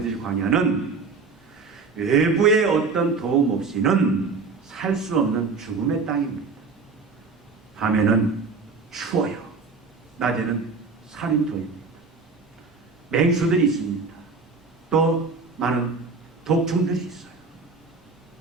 광야는 외부의 어떤 도움 없이는 살 수 없는 죽음의 땅입니다. 밤에는 추워요. 낮에는 살인토입니다. 맹수들이 있습니다. 또 많은 독충들이 있어요.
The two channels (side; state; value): left; quieter; 4.5 dB